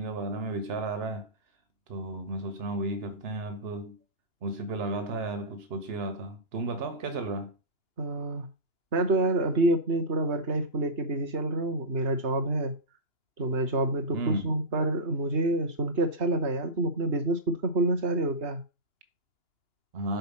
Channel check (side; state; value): left; late; 2.9 ms